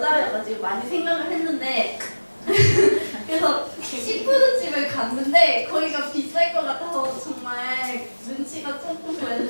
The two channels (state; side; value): inverted; both; correlation -1.00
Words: 많이 생각을 했는데 그래서 시푸드집을 갔는데 거기가 비쌀 것 같아서 정말 눈치가 조금